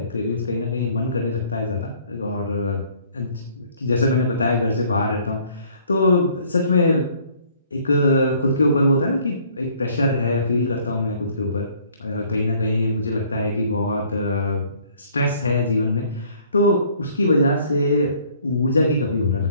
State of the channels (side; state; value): both; inverted; correlation -0.59